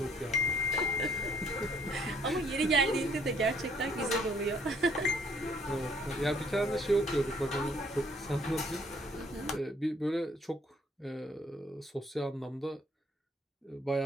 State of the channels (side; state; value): both; normal; correlation 0.63